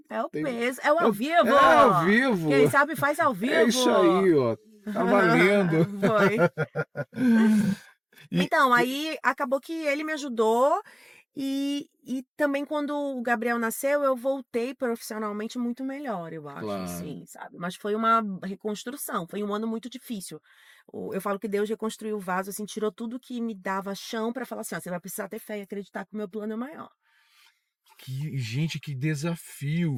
É o tem... peso. É o ao vivo. É ao vivo. Quem sabe faz ao vivo. É isso aí, ó. Tá valendo. Foi. E- Então, aí acabou que ele me ajudou. E também quando o Gabriel nasceu, eu voltei profissionalmente muito melhor, eu acho, Claro. assim, sabe? Mas foi uma reconstrução, foi um ano muito difícil. Eu falo que Deus reconstruiu o vaso, assim, tirou tudo que me dava chão pra falar assim, ó, você vai precisar ter fé e acreditar que o meu plano é maior. Gente, que desafio.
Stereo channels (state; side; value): identical; both; correlation 1.00